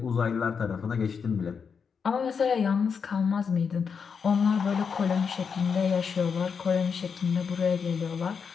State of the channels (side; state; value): right; quieter; 6.1 dB